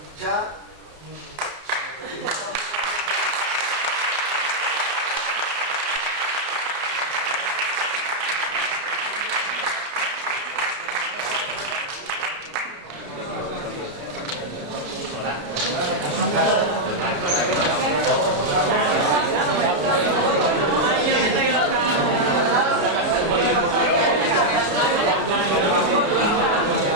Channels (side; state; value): left; late; 31 ms